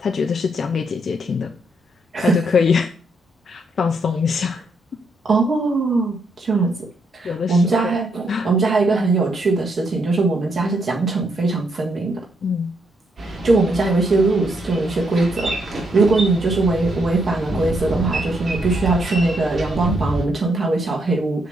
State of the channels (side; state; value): both; normal; correlation 0.76